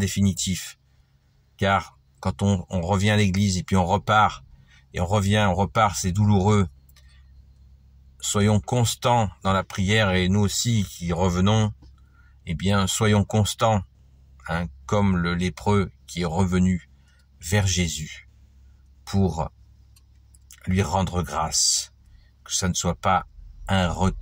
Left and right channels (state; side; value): identical; both; correlation 1.00